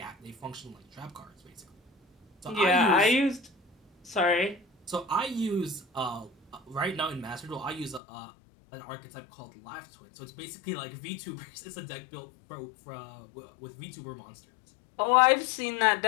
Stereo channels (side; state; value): right; drops out; at 8.0 s